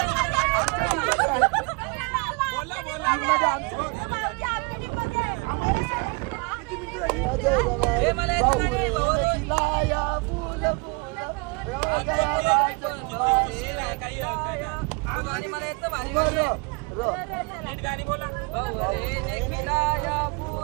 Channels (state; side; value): quieter; left; 30.8 dB